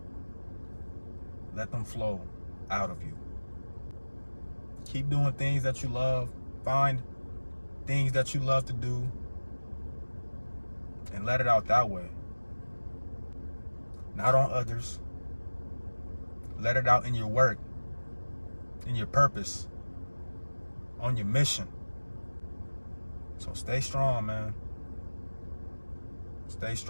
Let them flow out of you. Keep doing things that you love. Find things that you love to do. And let it out that way. Not on others. Let it out in your work. In your purpose. On your mission. So stay strong, man. Stay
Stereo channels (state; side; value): inverted; both; correlation -1.00